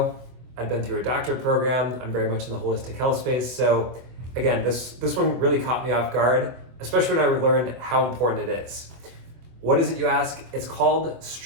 I've been through a doctorate program. I'm very much in the holistic health space. So again, this one really caught me off guard, especially when I learned how important it is. What is it, you ask? It's called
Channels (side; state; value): left; late; 24 ms